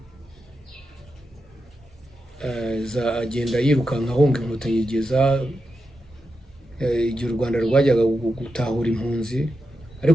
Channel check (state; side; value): normal; both; correlation 0.88